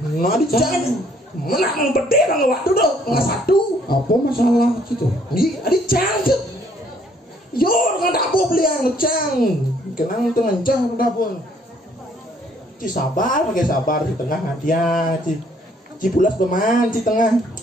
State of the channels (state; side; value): normal; both; correlation 0.64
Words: jangan menang berdeh bang waktu dong nggak satu apa masalah gitu di cangkep yo nggak dapur beli yang ngecang kenang tuh ngencah udah pun ci sabar pakai sabar di tengah hadiah ci pulas peman ci tengah